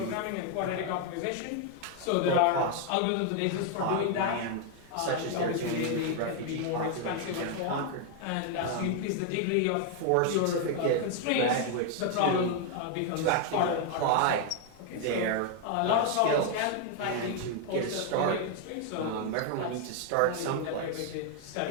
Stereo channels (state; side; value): different; both; correlation 0.00